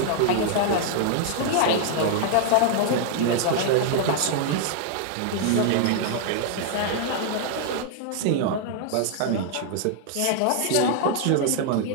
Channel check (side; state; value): both; different; correlation 0.00